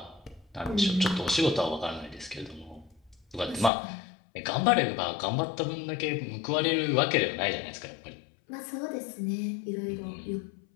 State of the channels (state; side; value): drops out; right; at 3.7 s